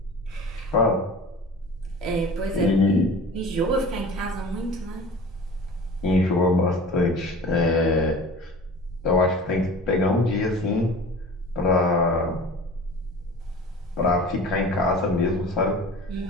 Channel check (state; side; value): normal; both; correlation 0.40